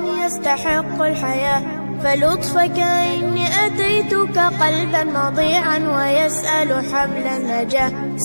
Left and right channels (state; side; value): inverted; both; correlation -1.00